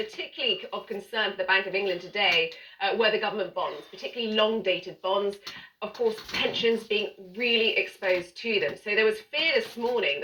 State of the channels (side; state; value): both; identical; correlation 1.00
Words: of concern for the Bank of England today were the government bonds, particularly long-dated bonds. Of course, pensions being really exposed to them. So there was fear this morning